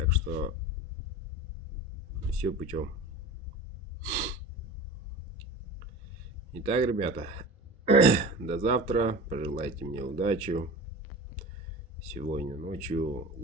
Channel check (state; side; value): normal; both; correlation 0.33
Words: что все путем. Итак, ребята, до завтра. Пожелайте мне удачи. Сегодня ночью